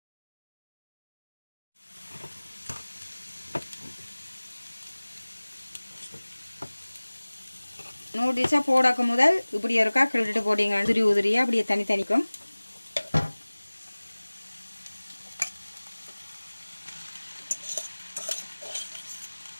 நூடுல்ஸை போடக்கு முதல் இப்படி இருக்கா கிளறிட்டு போட்டிங்க, உதிரியாக அப்படியே தனித்தனிக்கும்.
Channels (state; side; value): inverted; both; correlation -1.00